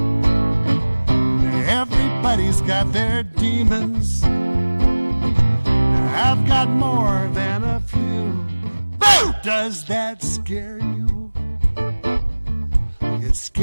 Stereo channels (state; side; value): inverted; both; correlation -1.00